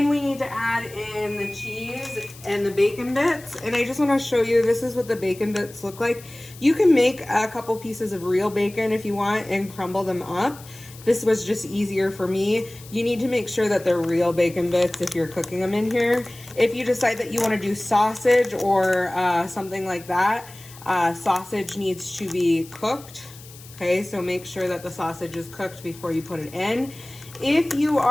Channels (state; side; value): noise; left; hiss, 20 dB below the sound